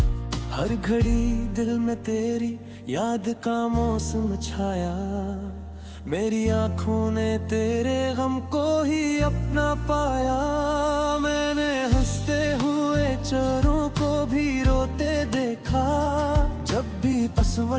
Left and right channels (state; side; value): identical; both; correlation 1.00